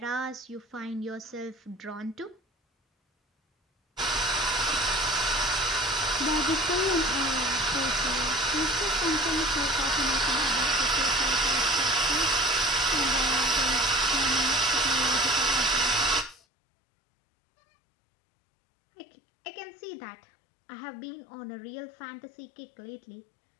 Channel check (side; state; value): right; drops out; at 16.4 s